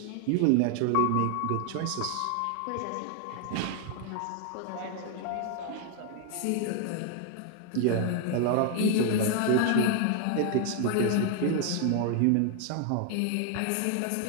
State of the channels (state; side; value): different; both; correlation 0.00